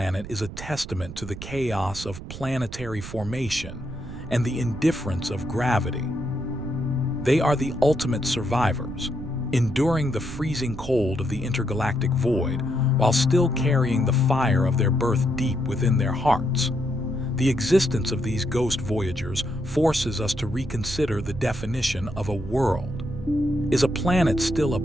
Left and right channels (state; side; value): noise; right; rumble, 11 dB below the sound